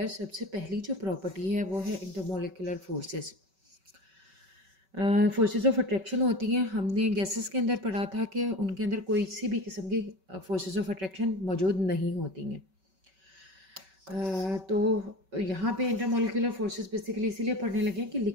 सबसे पहली जो प्रॉपर्टी है वो है intermolecular forces. Forces of attraction होती हैं। हमने गैसेस के अंदर पढ़ा था कि उनके अंदर कोई सी भी किस्म की फोर्सेस ऑफ अट्रैक्शन मौजूद नहीं होती हैं। तो यहाँ पे इंटरमोलिकुलर फोर्सेस बेसिकली इसीलिए पढ़ने लगे कि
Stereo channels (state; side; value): late; left; 5.3 ms